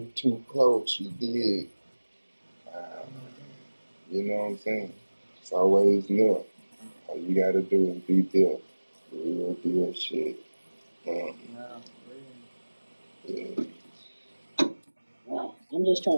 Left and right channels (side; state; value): both; inverted; correlation -1.00